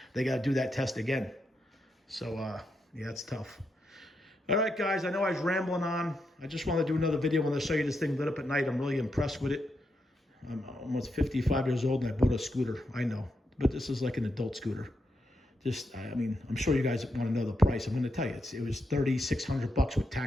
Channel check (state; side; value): normal; both; correlation 0.83